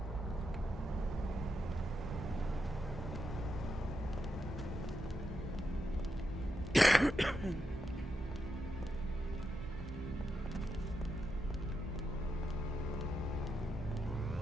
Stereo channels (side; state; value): both; normal; correlation 0.85